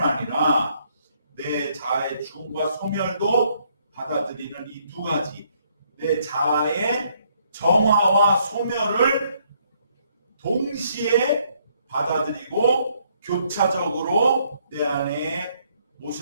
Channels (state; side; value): inverted; both; correlation -0.69